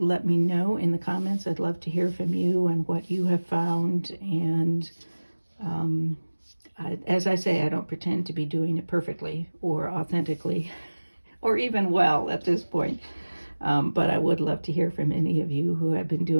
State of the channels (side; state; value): both; inverted; correlation -1.00